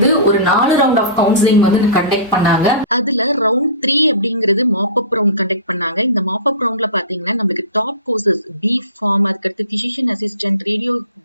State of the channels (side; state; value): both; inverted; correlation -0.36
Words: ஒரு 4 ரவுண்ட் ஆஃப் கவுன்சிலிங் கண்டக்ட் பண்ணாங்க. அதுல ரவுண்ட் 3 அப்படிங்கிறது மாப் அப் ரவுண்ட் கண்டக்ட் பண்ணாங்க. இந்த மாப் அப் ரவுண்ட்ல பாத்தீங்கன்னா நம்மளுக்கு டாப் கோர்சஸ் B.Pharm, அதுக்கடுத்து physician assistant,